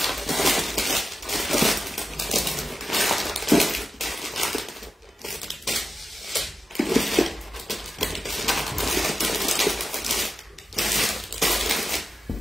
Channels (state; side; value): normal; both; correlation 0.91